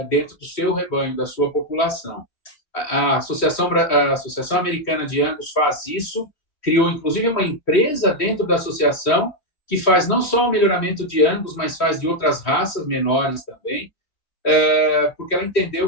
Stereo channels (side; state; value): right; late; 3.3 ms